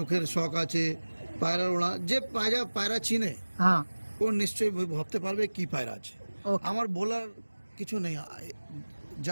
শখ আছে, পায়রা ওড়া, যে পায়রা চিনে হ্যাঁ ও নিশ্চয়ই ভাবতে পারবে কি পায়রা আছে। Okay. আমার বলার কিছু নেই,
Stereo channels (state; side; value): inverted; both; correlation -1.00